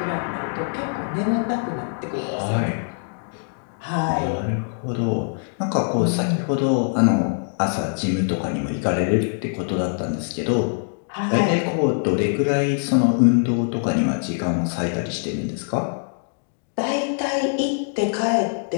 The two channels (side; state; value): right; silent; digital silence